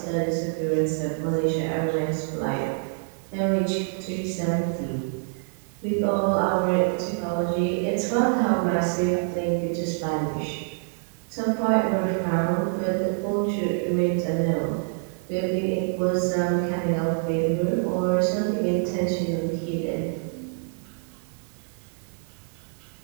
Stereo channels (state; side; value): silent; left; 59 dB below the other